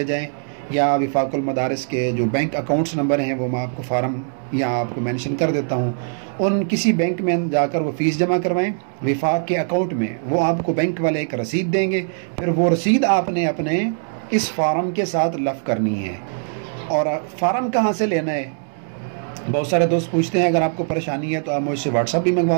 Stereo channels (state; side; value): silent; left; digital silence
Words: जाएं, या वफ़ाक़ुल मदारिस के जो बैंक अकाउंट्स नंबर हैं वो मैं आपको फ़ार्म या आपको मेंशन कर देता हूँ, उन किसी बैंक में जाकर वो फ़ीस जमा करवाएं। वफ़ाक़ के अकाउंट में वो आपको बैंक वाले एक रसीद देंगे, फिर वो रसीद आपने अपने इस फ़ार्म के साथ लफ़ करनी है। और फ़ार्म कहाँ से लेना है, बहुत सारे दोस्त पूछते हैं। अगर आपको परेशानी है तो आप मुझसे व्हाट्सअप भी